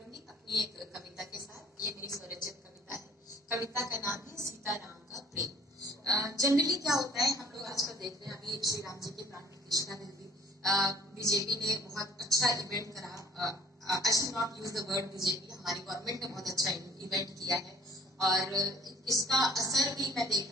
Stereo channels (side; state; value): both; normal; correlation 0.54